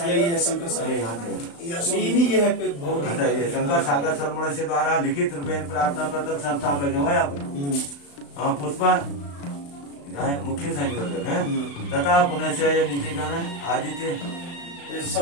सागर सरमण से द्वारा लिखित रूपेण प्रार्थना पत्र संस्थापक है पुष्पा मुख्य संयोजक है तथा पुनः नीचे का आदित्य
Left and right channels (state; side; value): late; right; 35 ms